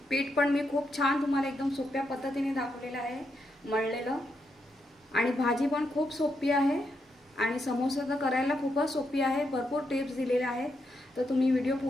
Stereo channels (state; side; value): normal; both; correlation 0.82